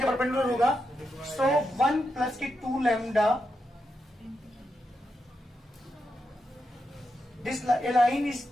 के परपेंडिकुलर होगा। सो 1 प्लस के 2 lambda, this line is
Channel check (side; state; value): both; normal; correlation 0.85